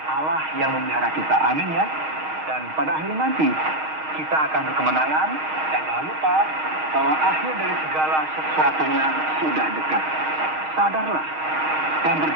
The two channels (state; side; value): late; left; 6.4 ms